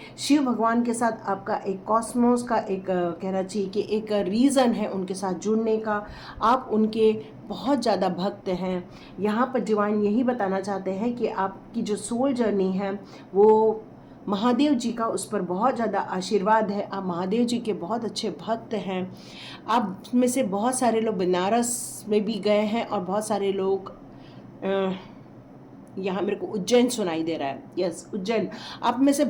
शिव भगवान के साथ आपका एक कॉस्मोस का एक कहना चाहिए कि एक रीज़न है उनके साथ जुड़ने का। आप उनके बहुत ज़्यादा भक्त हैं। यहाँ पर डिवाइन यही बताना चाहते हैं कि आपकी जो सोल जर्नी है वो महादेव जी का उस पर बहुत ज़्यादा आशीर्वाद है। आप महादेव जी के बहुत अच्छे भक्त हैं। आप में से बहुत सारे लोग बनारस में भी गए हैं और बहुत सारे लोग यहाँ मेरे को उज्जैन सुनाई दे रहा है, यस उज्जैन। आप में से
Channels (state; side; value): identical; both; correlation 1.00